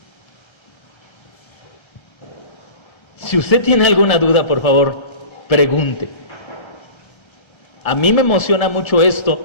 Si usted tiene alguna duda, por favor, pregunte. A mí me emociona mucho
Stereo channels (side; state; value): right; late; 1.3 ms